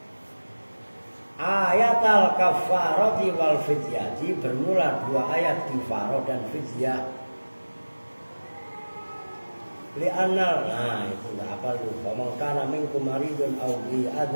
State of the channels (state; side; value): inverted; both; correlation -1.00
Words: Ayatal kafarati wal fidyati bermula dua ayat kifarah dan fidyah. Li'anal nah itu enggak apa lu. Faman kana minkum maridun aw bi